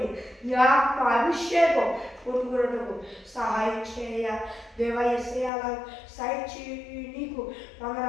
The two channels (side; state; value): right; drops out; at 5.5 s